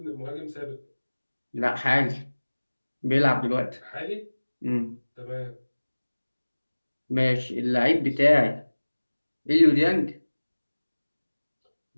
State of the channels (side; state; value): both; inverted; correlation -1.00